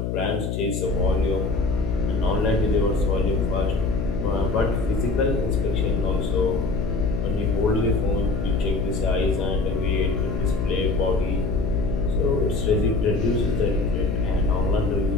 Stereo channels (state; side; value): noise; left; hum, 2 dB below the sound